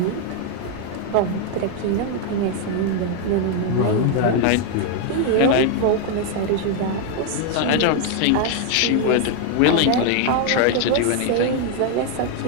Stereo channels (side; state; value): both; different; correlation 0.00